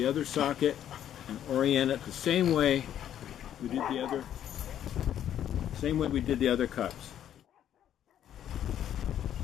other socket and orient it the same way we did the other cups.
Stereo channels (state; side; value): quieter; right; 10.6 dB